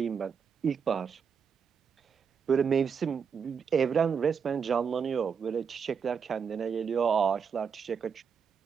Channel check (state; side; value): quieter; left; 6.5 dB